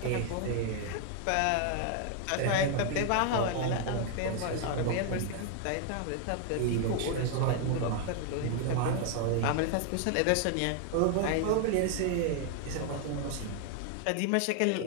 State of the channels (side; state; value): both; different; correlation 0.00